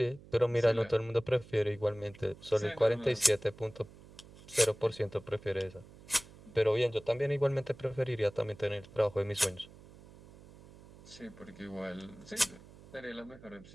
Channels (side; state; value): right; noise; hum, 21 dB below the sound